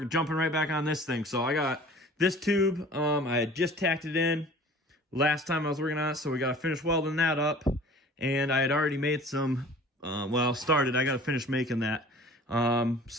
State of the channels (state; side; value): normal; both; correlation 0.46